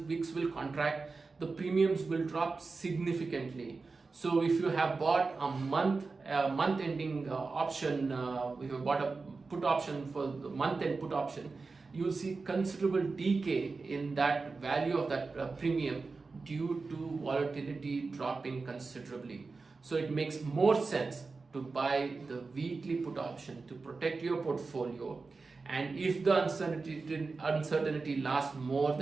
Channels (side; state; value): left; quieter; 4.1 dB